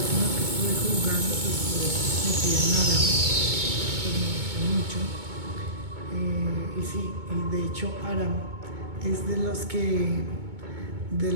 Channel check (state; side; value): late; left; 2.2 ms